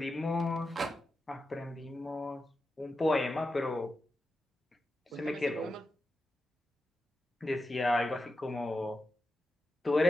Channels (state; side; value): normal; both; correlation 0.90